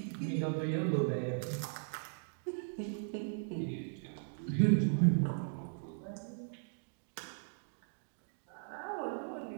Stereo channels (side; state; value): left; silent; digital silence